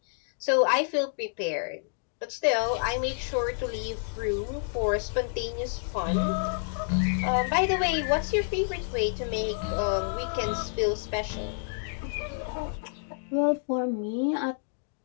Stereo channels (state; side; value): silent; right; digital silence